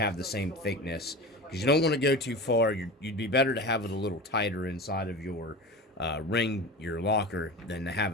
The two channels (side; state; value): both; normal; correlation 0.31